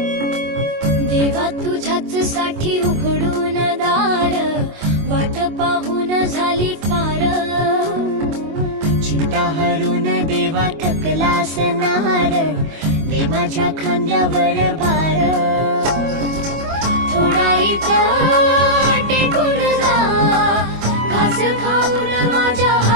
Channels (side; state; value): left; late; 25 ms